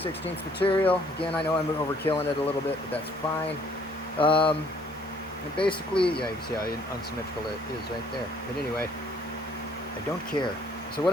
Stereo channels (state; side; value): normal; both; correlation 0.61